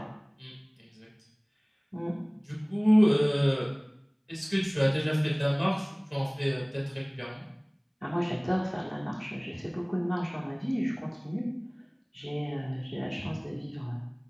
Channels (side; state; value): both; identical; correlation 1.00